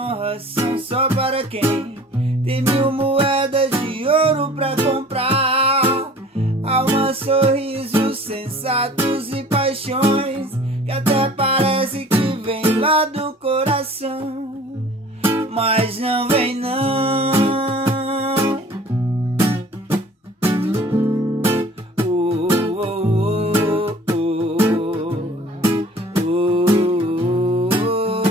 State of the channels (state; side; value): normal; both; correlation 0.48